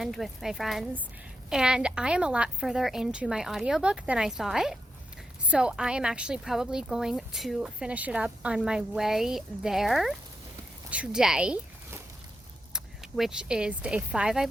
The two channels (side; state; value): both; normal; correlation 0.85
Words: with my friends. And I am a lot further into my audiobook than I thought. So I am actually probably going to finish it up on my way there today, which is day 5, I